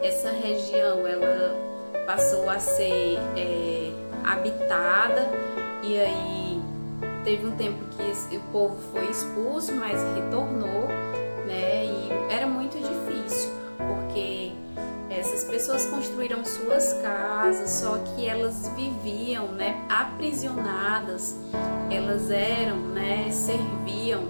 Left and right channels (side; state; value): both; inverted; correlation -1.00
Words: Essa região ela passou a ser habitada e aí teve um tempo que o povo foi expulso, mas retornou, né? E era muito difícil porque essas pessoas construíram suas casas, só que elas viviam, né, aprisionadas, elas eram, né, serviam